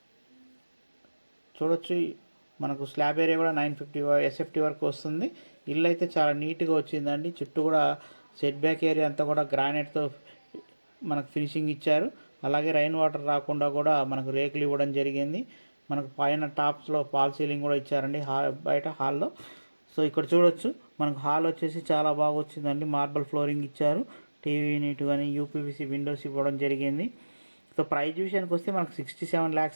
చూడొచ్చు, మనకు స్లాబ్ ఏరియా కూడా 950 ఎస్ఎఫ్టీ వరకు వస్తుంది. ఇల్లు అయితే చాలా నీట్గా వచ్చిందండి. చుట్టూ కూడా సెట్ బ్యాక్ ఏరియా అంతా కూడా గ్రానైట్తో మనకు ఫినిషింగ్ ఇచ్చారు. అలాగే రైన్ వాటర్ రాకుండా కూడా మనకు రేకులు ఇవ్వడం జరిగింది. మనకు పైన టాప్స్లో ఫాల్ సీలింగ్ కూడా ఇచ్చారండి బయట హాల్లో. సో ఇక్కడ చూడొచ్చు, మనకు హాల్ వచ్చేసి చాలా బాగా వచ్చిందండి. మార్బల్ ఫ్లోరింగ్ ఇచ్చారు. టీవీ యూనిట్ కానీ యూపీవీసీ విండోస్ ఇవ్వడం జరిగింది. సో ప్రైజ్ విషయానికి వస్తే మనకు 67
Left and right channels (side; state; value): both; inverted; correlation -1.00